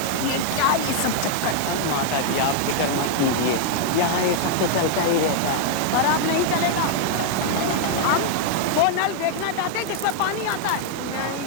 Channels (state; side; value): different; both; correlation 0.00